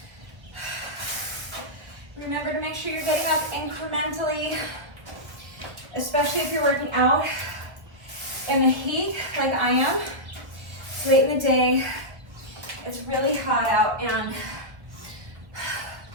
Remember to make sure you're getting up incrementally, especially if you're working out in the heat like I am. It's late in the day. It's really hot out and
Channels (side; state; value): left; late; 1.1 ms